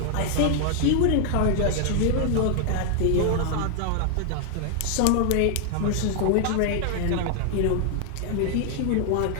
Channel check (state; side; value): different; both; correlation 0.00